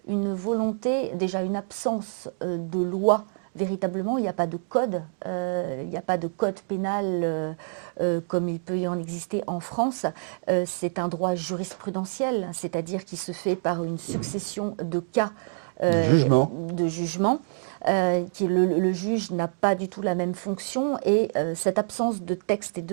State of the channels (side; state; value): left; silent; 60 dB below the other